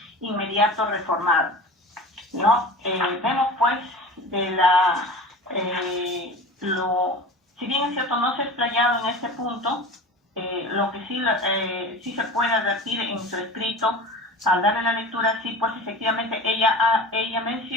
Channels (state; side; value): normal; both; correlation 0.35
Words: inmediato reformado, ¿no? Vemos pues si bien es cierto no se ha explayado en este punto, lo que sí se puede advertir en su escrito al darle la lectura, sí, pues efectivamente ella